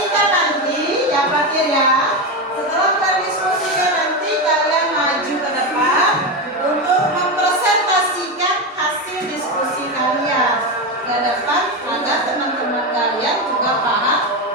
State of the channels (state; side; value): normal; both; correlation 0.14